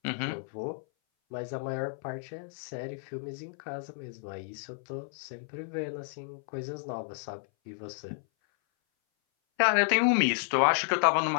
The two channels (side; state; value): right; silent; 57 dB below the other